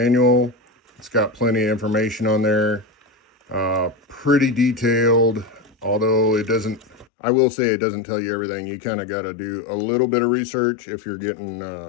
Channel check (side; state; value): right; drops out; at 7.1 s